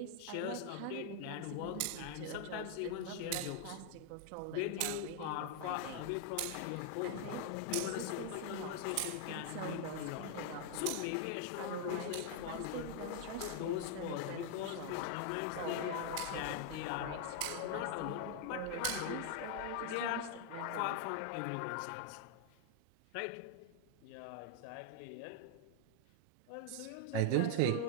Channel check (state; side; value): different; both; correlation 0.00